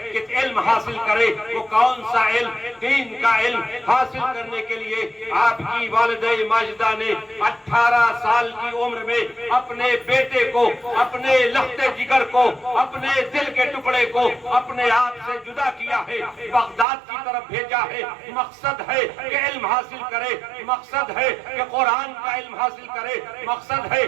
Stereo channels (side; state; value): left; drops out; at 16.9 s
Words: کہ علم حاصل کرے۔ وہ کون سا علم؟ دین کا علم حاصل کرنے کے لیے آپ کی والدہ ماجدہ نے 18 سال کی عمر میں اپنے بیٹے کو، اپنے لخت جگر کو، اپنے دل کے ٹکڑے کو اپنے آپ سے جدا کیا ہے، بغداد کی طرف بھیجا ہے۔ مقصد ہے کہ علم حاصل کرے، مقصد ہے کہ قرآن کا علم حاصل کرے، مقصد ہے